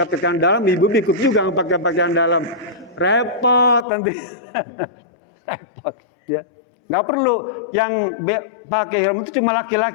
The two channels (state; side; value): drops out; right; at 3.9 s